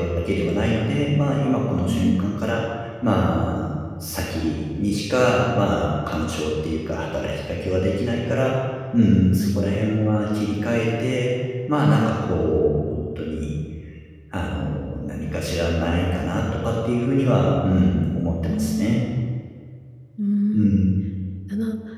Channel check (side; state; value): both; identical; correlation 1.00